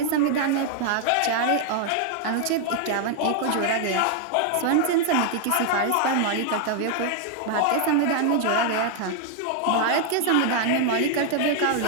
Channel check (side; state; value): both; different; correlation 0.00